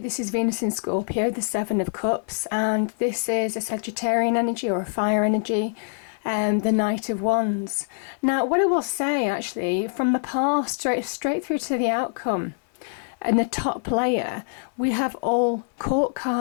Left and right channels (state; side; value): silent; right; 62 dB below the other